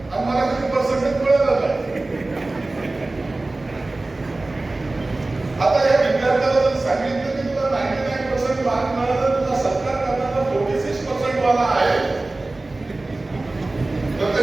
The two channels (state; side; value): quieter; left; 3.0 dB